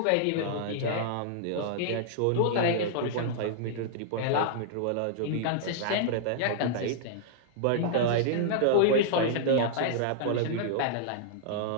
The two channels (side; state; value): both; different; correlation -0.01